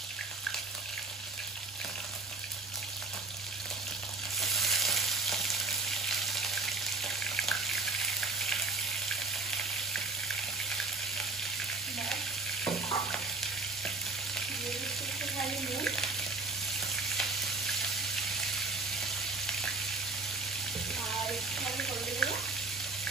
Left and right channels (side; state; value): left; quieter; 3.6 dB